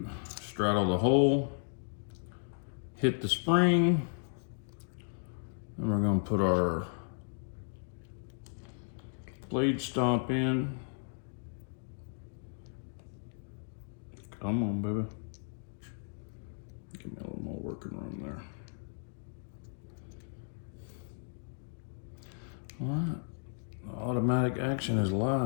straddle the hole, hit the spring, and we're going to put our blade stop in. Come on, baby. Give me a little more working room there. All right, the automatic action is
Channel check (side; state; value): right; silent; digital silence